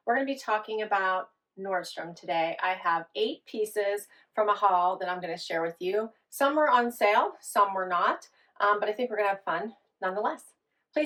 We're going to be talking about Nordstrom today. I have 8 pieces from a haul that I'm going to share with you. Some were on sale, some were not, but I think we're going to have fun nonetheless.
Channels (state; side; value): identical; both; correlation 1.00